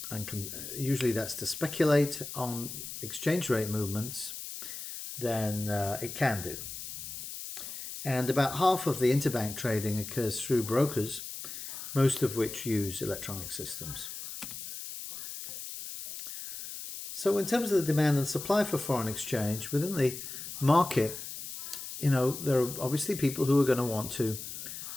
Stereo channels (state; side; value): noise; left; hiss, 9 dB below the sound